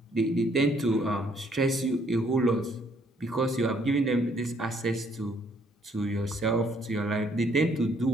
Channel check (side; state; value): both; normal; correlation 0.66